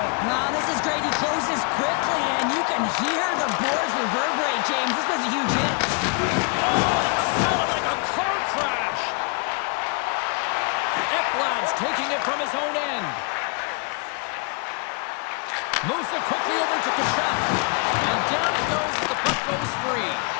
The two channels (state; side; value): quieter; right; 34.6 dB